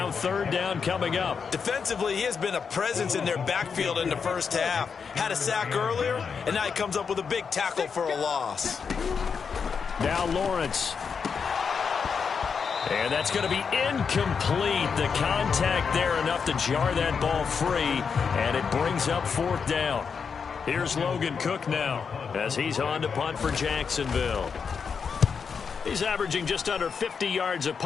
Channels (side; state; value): right; quieter; 6.0 dB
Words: third down coming up. Defensively, he has been a presence in their backfield in the first half. Had a sack earlier, and now he comes up with a big tackle for a loss. Now Lawrence. And that's going to be incomplete. The contact there enough to jar that ball free, and it brings up 4th down. Here's Logan Cook now as he's on to punt for Jacksonville. He's averaging just under 50 yards a